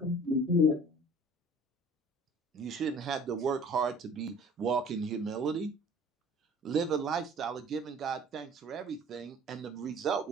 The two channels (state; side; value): normal; both; correlation 0.49